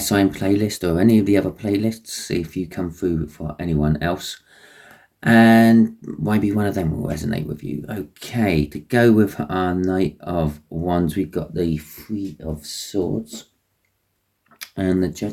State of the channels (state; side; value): identical; both; correlation 1.00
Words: playlist or any of the other playlists. See if you come through for anyone else. And maybe one of them will resonate with you. Okay, to go with our Knight of Wands, we've got the Three of Swords and the